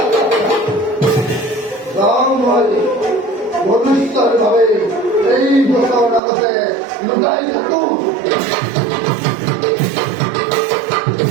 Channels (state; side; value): drops out; left; at 6.2 s